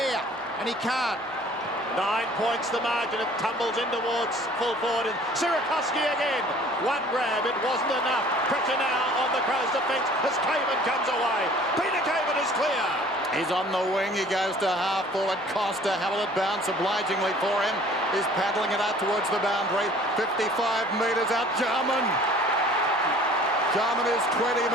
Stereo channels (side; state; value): left; noise; hum, 30 dB below the sound